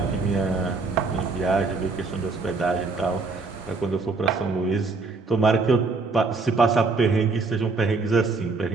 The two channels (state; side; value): quieter; left; 4.0 dB